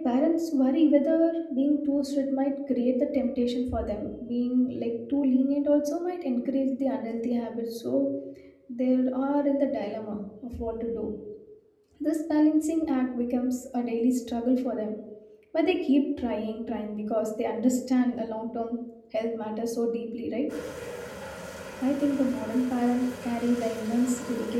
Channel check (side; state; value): both; identical; correlation 1.00